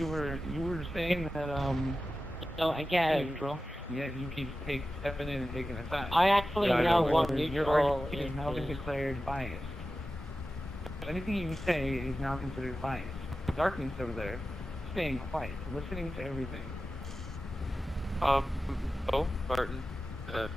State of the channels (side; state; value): both; normal; correlation 0.94